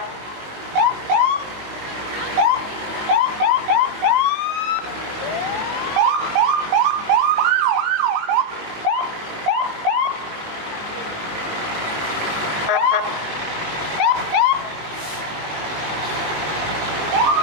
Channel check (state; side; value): late; left; 19 ms